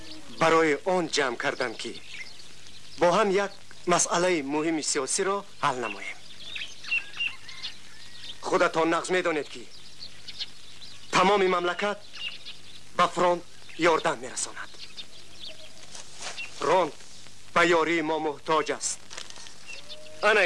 برای آن جمع کردم که با هم یک مسئله مهم سیاسی را حل نماییم. خودتان نقض می‌دانید که تمام مملکت به فرانت یاردن می‌رساند. فرانت به یاری ما محتاج است. انا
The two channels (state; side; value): identical; both; correlation 1.00